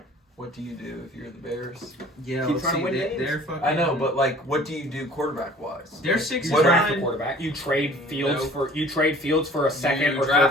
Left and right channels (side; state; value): both; normal; correlation 0.49